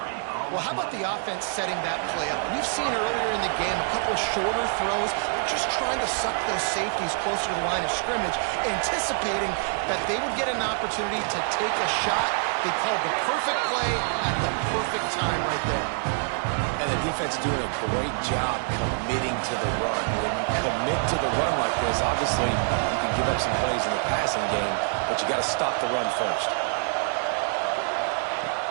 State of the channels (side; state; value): left; silent; 61 dB below the other